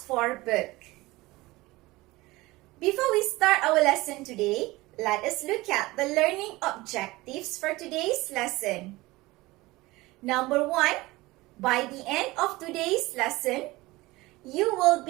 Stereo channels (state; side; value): quieter; left; 20.4 dB